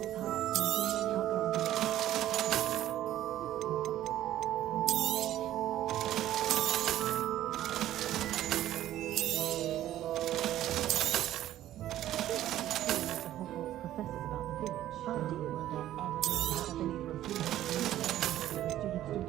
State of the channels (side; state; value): left; quieter; 13.1 dB